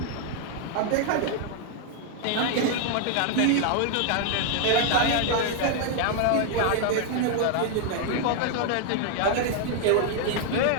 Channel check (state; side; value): different; both; correlation 0.00